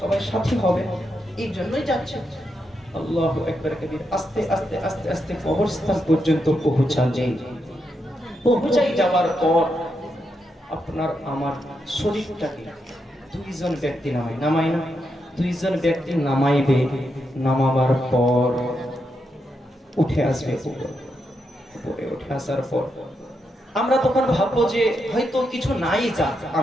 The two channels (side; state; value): both; normal; correlation 0.83